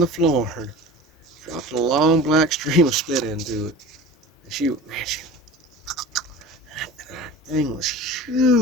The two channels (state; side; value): normal; both; correlation 0.37